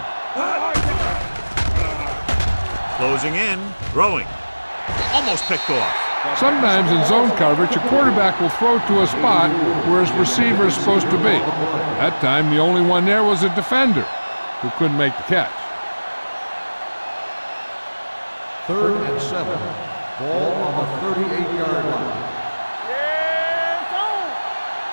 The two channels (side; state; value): both; inverted; correlation -1.00